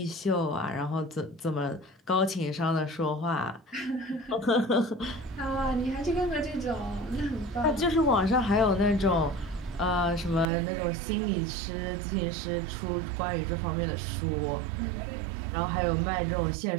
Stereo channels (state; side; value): drops out; left; at 10.5 s